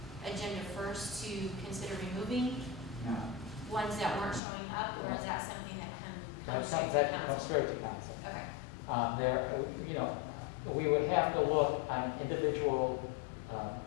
agenda first to consider removing No. ones that weren't showing up, or is that something that comes That straight to comes council? straight to council. Okay, We would have to look on an individual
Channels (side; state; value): right; drops out; at 4.4 s